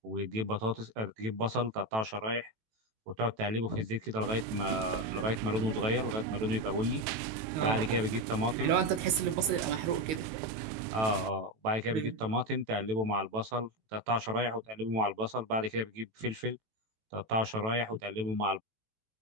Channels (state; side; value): late; left; 19 ms